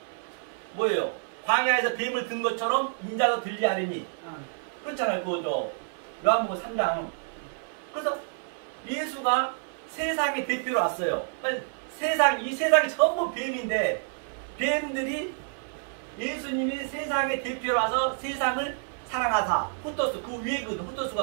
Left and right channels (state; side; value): silent; left; 59 dB below the other